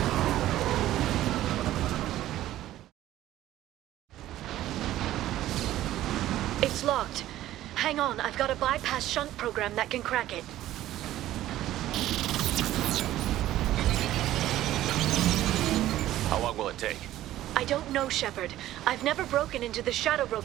It's locked. Hang on, I've got a bypass shunt program that can crack it. How long will it take? I don't know, Shepard. I've never broken into the Shadow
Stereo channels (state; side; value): quieter; left; 14.0 dB